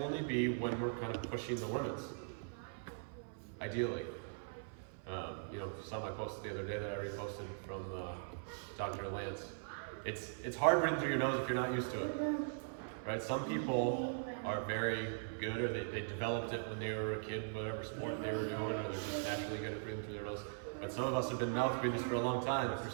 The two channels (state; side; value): silent; left; 51 dB below the other